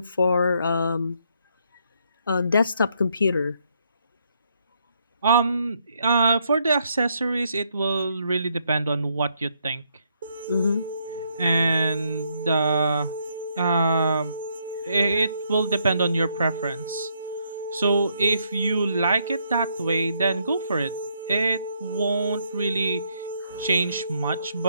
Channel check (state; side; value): inverted; both; correlation -0.73